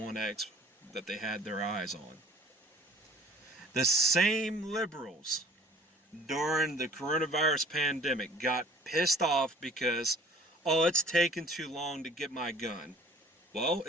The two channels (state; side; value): normal; both; correlation 0.50